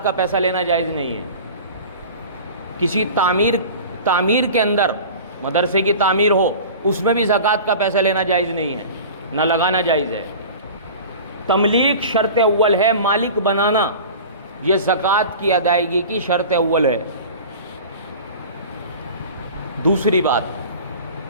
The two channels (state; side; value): inverted; both; correlation -0.38